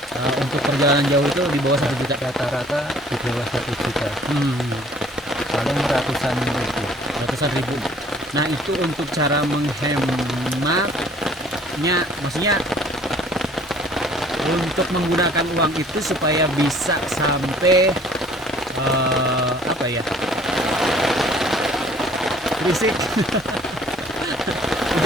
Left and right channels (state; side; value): normal; both; correlation 0.55